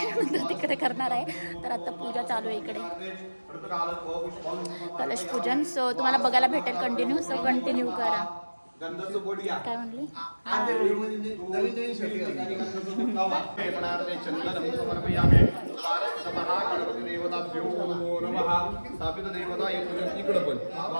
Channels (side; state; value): both; inverted; correlation -1.00